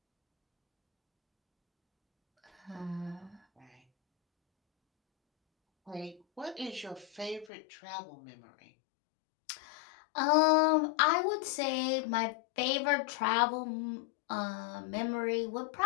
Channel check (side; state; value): right; drops out; at 7.5 s